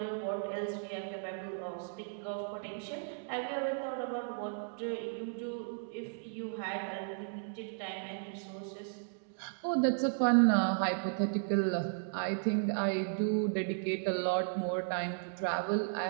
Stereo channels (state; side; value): silent; left; digital silence